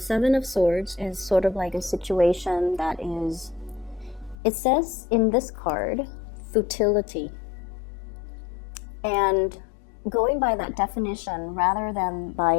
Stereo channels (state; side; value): drops out; right; at 4.4 s